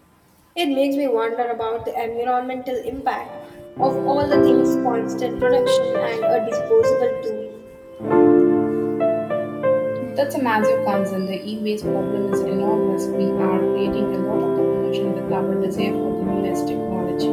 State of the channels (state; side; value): identical; both; correlation 1.00